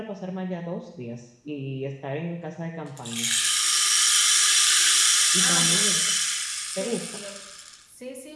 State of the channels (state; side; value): identical; both; correlation 1.00